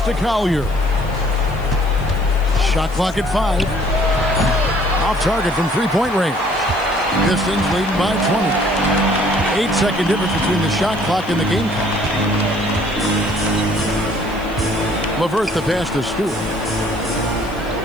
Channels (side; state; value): left; noise; hiss, 24 dB below the sound